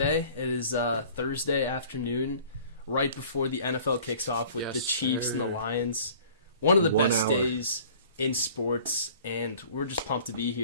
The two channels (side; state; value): both; inverted; correlation -0.49